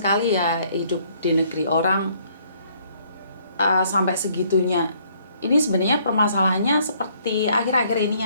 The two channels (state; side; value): inverted; both; correlation -0.64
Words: ya hidup di negeri orang sampai segitunya. Ini sebenarnya permasalahannya seperti akhir-akhir ini